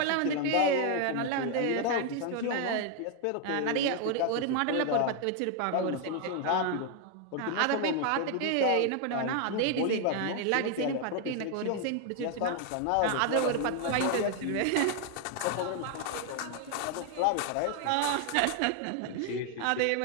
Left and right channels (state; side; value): different; both; correlation 0.00